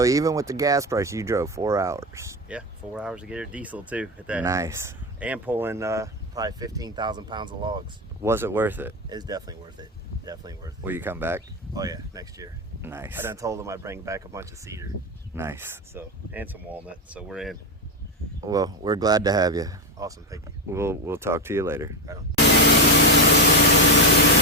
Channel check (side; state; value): both; normal; correlation 0.12